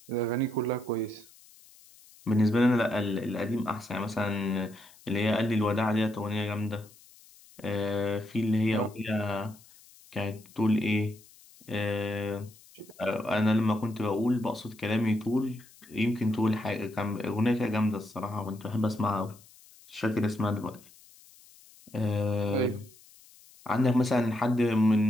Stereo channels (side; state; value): left; noise; hiss, 25 dB below the sound